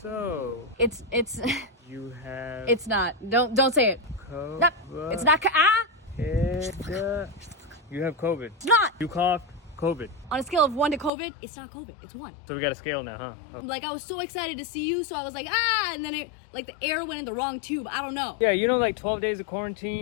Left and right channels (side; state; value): right; drops out; at 11.1 s